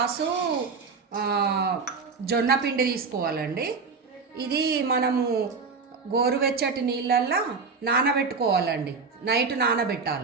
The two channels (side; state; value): left; quieter; 4.9 dB